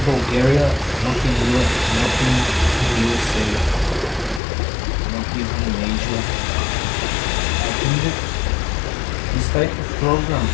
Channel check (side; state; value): right; drops out; at 4.4 s